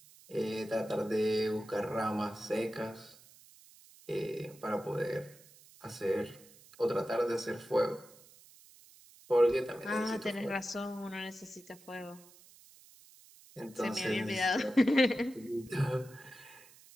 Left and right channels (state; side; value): noise; right; hiss, 23 dB below the sound